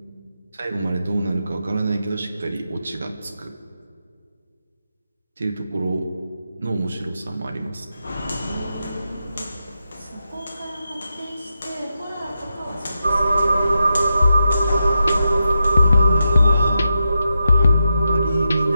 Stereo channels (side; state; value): both; inverted; correlation -0.87